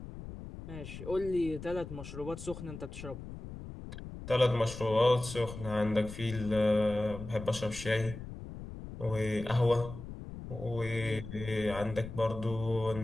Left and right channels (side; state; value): left; noise; rumble, 11 dB below the sound